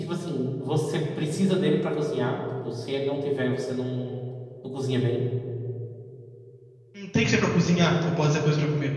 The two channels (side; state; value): both; identical; correlation 1.00